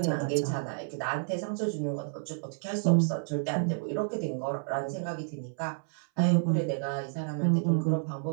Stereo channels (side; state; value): left; silent; 58 dB below the other